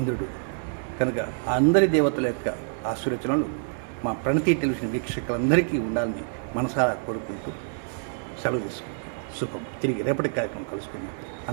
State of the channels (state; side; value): silent; left; digital silence